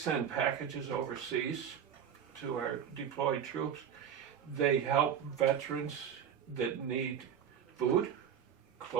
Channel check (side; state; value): left; quieter; 8.6 dB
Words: packages overseas to our deployed troops. They help veterans that need food,